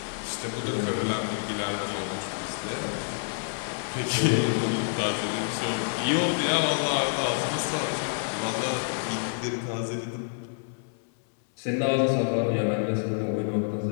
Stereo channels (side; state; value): right; silent; 59 dB below the other